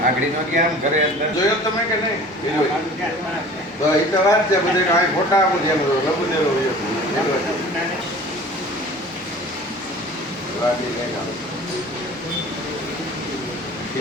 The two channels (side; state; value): both; normal; correlation 0.44